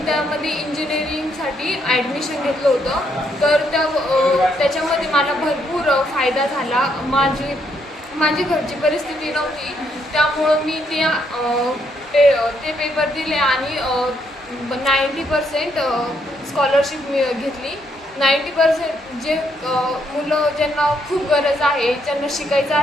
त्यामध्ये इंजिनिअरिंगसाठी ॲडमिशन घेतलं होतं। तर त्याच्यामध्ये मला भरपूर फायदा झाला। माझी घरची परिस्थिती नव्हती, त्यामुळं मी ते पेपर दिले आणि 90% स्कॉलरशिप घेतली। 90% जे मुलं ज्यांना खूप गरज आहे, ज्यांना शिकायचं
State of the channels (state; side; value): normal; both; correlation 0.74